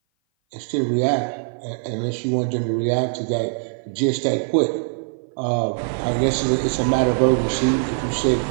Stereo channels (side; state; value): left; silent; 57 dB below the other